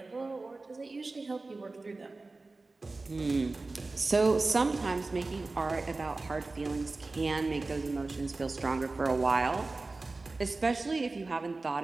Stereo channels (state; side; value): quieter; left; 3.4 dB